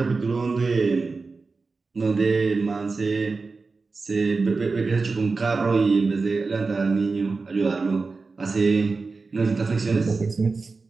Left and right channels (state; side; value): quieter; left; 4.1 dB